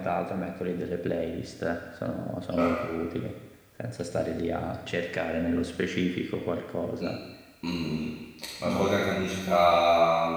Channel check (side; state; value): both; identical; correlation 1.00